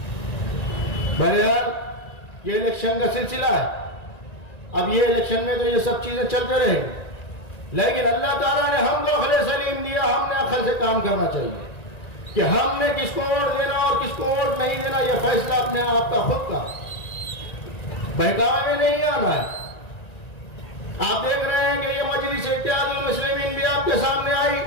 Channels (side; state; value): right; late; 1.9 ms